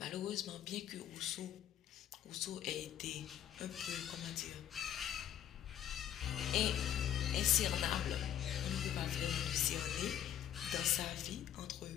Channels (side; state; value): right; quieter; 10.9 dB